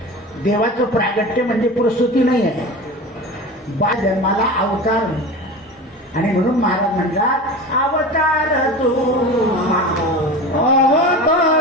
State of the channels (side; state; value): both; normal; correlation 0.31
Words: देवाचं प्रागट्य म्हणजे प्रस्तुती नाही आहे, बा जन्माला अवतार. आणि म्हणून महाराज म्हणतात अवतार तू,